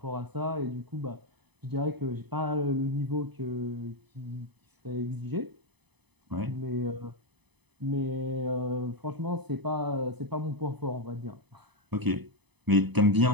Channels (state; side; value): late; left; 0.99 ms